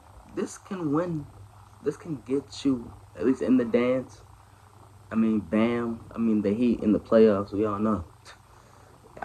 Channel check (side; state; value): both; identical; correlation 1.00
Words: This can win. This can get you at least in the dance. I mean, Bam. I mean, the Heat in the playoffs. We all know.